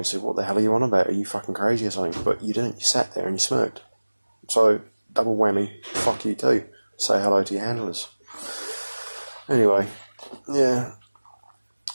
said, what the hell are you on about? Are you fucking crazy or something? But you didn't. You sat there and you smirked. So, double whammy, fuck you too. Say hello to your handlers. Anyway, yeah.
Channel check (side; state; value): both; inverted; correlation -1.00